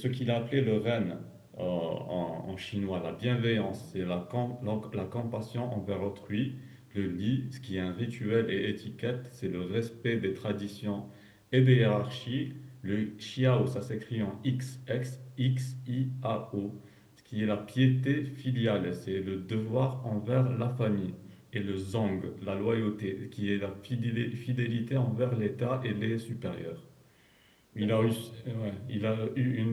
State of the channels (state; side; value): identical; both; correlation 1.00